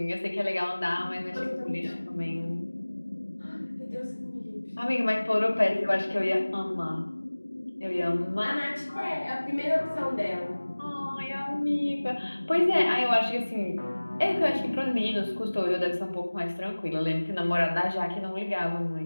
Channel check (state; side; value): inverted; both; correlation -1.00